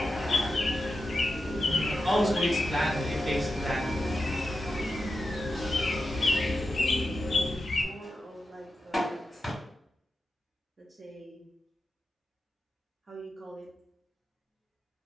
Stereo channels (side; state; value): both; normal; correlation 0.89